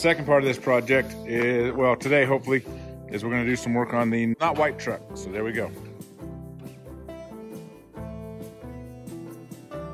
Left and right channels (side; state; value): both; identical; correlation 1.00